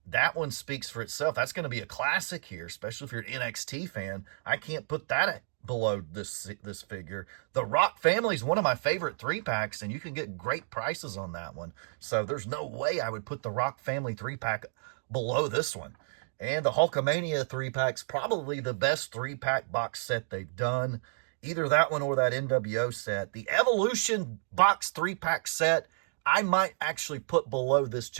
That one speaks for itself. That's going to be a classic here, especially if you're an NXT fan. I can't put that below this figure. The Rock Family is one of my favorite 3-packs, and you can get great prices on that one. So there's no way I would put the Rock Family 3-pack below this one. And the Hulkamania 3-pack's probably the best 3-pack box set they've done. Either that one or that NWO set. The Evolution box 3-pack set, I might actually put below this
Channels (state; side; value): silent; left; digital silence